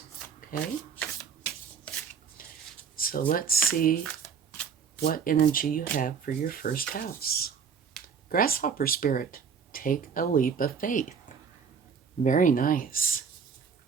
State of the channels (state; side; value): quieter; left; 6.5 dB